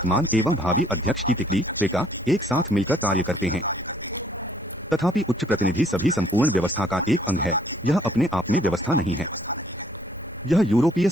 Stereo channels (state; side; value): normal; both; correlation 0.62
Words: एवं भावी अध्यक्ष की तिकड़ी त्रिका एक साथ मिलकर कार्य करते हैं। तथापि उच्च प्रतिनिधि सभी संपूर्ण व्यवस्था का एक अंग है। यह अपने आप में व्यवस्था नहीं है। यह यूरोपीय